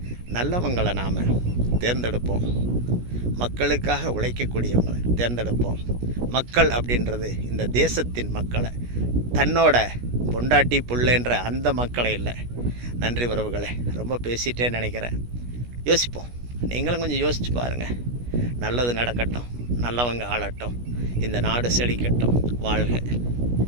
நல்லவங்களை நாம் தேர்ந்தெடுப்போம், மக்களுக்காக உழைக்கக்கூடியவங்களை தேர்ந்தெடுப்போம். மக்கள் அப்படின்றது இந்த தேசத்தின் மக்களை, தன்னோட பொண்டாட்டி புள்ளன்ற அந்த மக்களை இல்லை. நன்றி உறவுகளே, ரொம்ப பேசிட்டேன்னு நினைக்கிறேன். யோசிப்போம், நீங்களும் கொஞ்சம் யோசிச்சு பாருங்கள். நல்லது நடக்கட்டும், நல்லவங்க ஆளட்டும், இந்த நாடு செழிக்கட்டும். வாழ்க.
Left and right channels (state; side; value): late; left; 17 ms